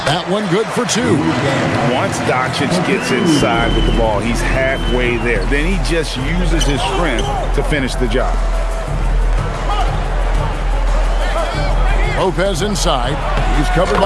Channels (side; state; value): both; identical; correlation 1.00